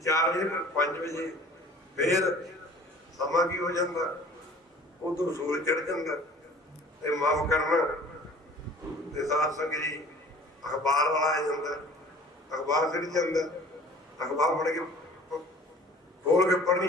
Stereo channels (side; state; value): both; normal; correlation 0.48